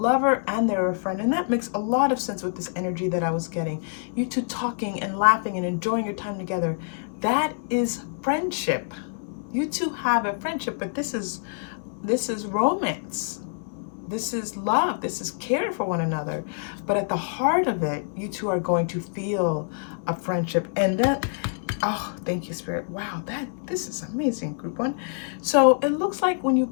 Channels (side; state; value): right; silent; digital silence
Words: and they're a friend. And that makes a lot of sense with this energy that I was getting. You two talking and laughing and enjoying your time together. That is friendship. You two have a friendship, but this is romance. This is love. This is care for one another. But at the heart of it, you two are going to feel a friendship. And that Oh, thank you, Spirit. Wow, this is amazing, Group 1. So it looks like when you